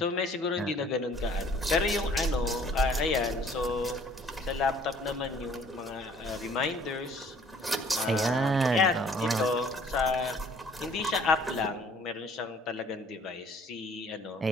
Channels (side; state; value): both; normal; correlation 0.57